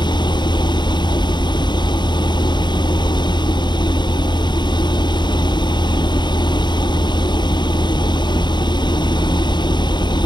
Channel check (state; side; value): late; right; 0.22 ms